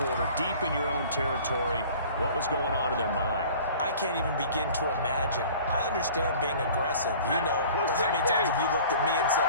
deep in your own territory. What was going on in their mind? I can't even begin to imagine. I understand being aggressive. You know, how many times have you looked at me and said,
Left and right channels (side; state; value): both; inverted; correlation -0.46